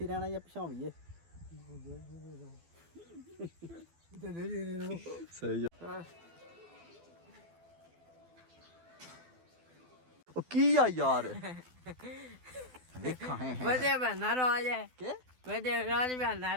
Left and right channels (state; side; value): late; left; 12 ms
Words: ਰਹਿਣਾ ਜਾਂ ਪਛਾਵੀਏ ਸਹੀ ਉਹ ਕੀ ਆ ਯਾਰ ਵੇਖਾਂ ਹੈ ਵਧੀਆ ਬਣਾ ਰੋਜ ਹੈ ਕਿ ਵਧੀਆ ਰੋਜ ਬਣਾ